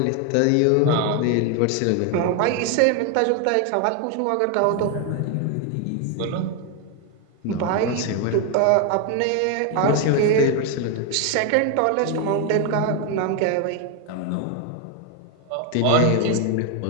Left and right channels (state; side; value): different; both; correlation 0.01